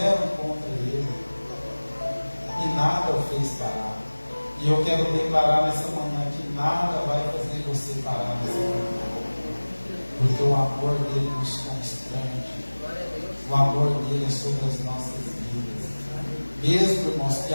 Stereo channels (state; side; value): inverted; both; correlation -1.00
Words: contra Ele, e nada o fez parar. E eu quero declarar nessa manhã que nada vai fazer você parar nessa manhã, porque o amor dele nos constrange, o amor dele é sobre as nossas vidas. Mesmo, irmãos, que